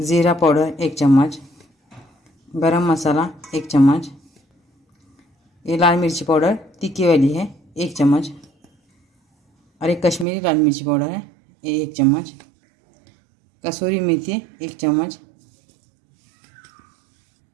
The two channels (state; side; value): drops out; left; at 10.2 s